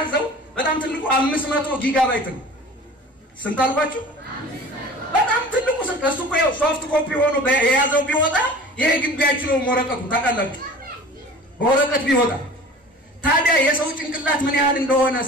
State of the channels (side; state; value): both; normal; correlation 0.42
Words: በጣም ትልቁ 500 ጊጋባይት ነው ስንት አልኳችሁ በጣም ትልቁ እሱ እኮ ሶፍት ኮፒ ሆኖ የያዘው ቢወጣ ይሄ ግቢያችሁ ነው ወረቀቱ ታውቃላችሁ ወረቀት ቢወጣ ታዲያ የሰው ጭንቅላት ምን ያህል እንደሆነ